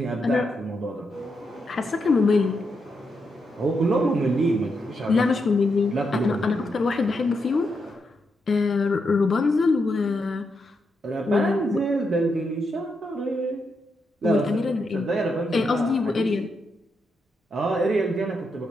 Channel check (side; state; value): both; normal; correlation 0.83